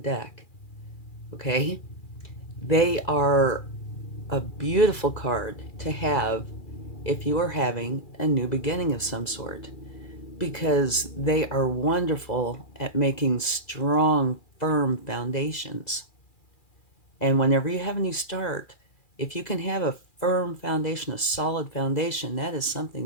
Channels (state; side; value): late; right; 2.4 ms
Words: Okay? They are a beautiful card to have if you are having a new beginning of some sort, because they are wonderful at making strong, firm foundations. And whenever you have a new start, if you can have a firm foundation, a solid foundation, that is